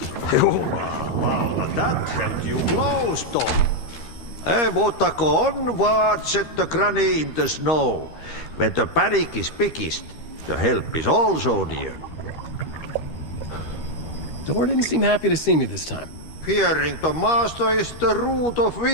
Well, that held you close, Tom. Mutta onward, said the granny in the snow. When the panic is biggest, the help is also near. Door didn't seem happy to see me this time. Fearing the master is the root of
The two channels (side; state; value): right; late; 13 ms